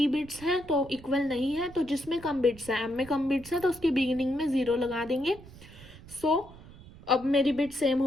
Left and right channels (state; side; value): noise; right; rumble, 19 dB below the sound